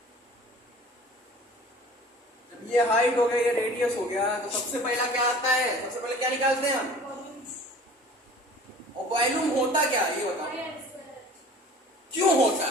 जब ये हाइट हो गया, ये रेडियस हो गया, तो सबसे पहला क्या आता है? सबसे पहले क्या निकालते हैं हम? और वॉल्यूम होता क्या, ये बताओ। क्यों होता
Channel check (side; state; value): both; normal; correlation 0.45